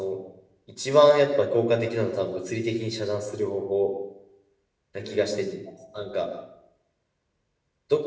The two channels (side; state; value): both; identical; correlation 1.00